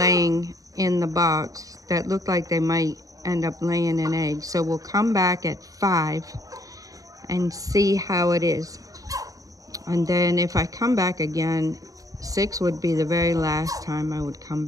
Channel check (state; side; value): late; left; 0.17 ms